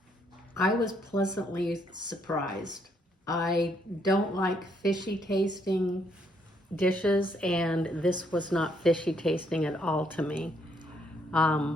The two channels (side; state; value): both; normal; correlation 0.71